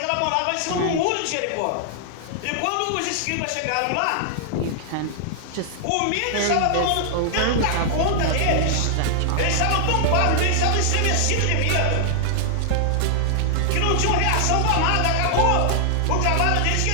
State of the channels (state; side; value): different; both; correlation -0.01